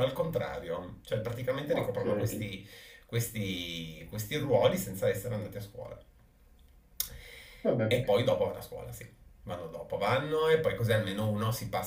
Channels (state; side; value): identical; both; correlation 1.00